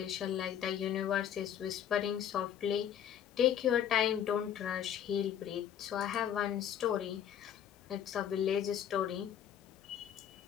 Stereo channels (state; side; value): quieter; right; 9.7 dB